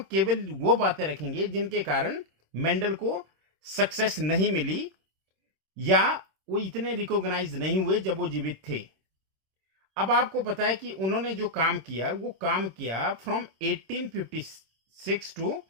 केवल वो बातें रखेंगे जिनके कारण मेंडल को सक्सेस नहीं मिली या वो इतने रिकॉग्नाइज नहीं हुए जब वो जीवित थे। अब आपको पता है कि उन्होंने जो काम किया वो काम किया फ्रॉम 1856 टू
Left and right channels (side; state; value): left; late; 26 ms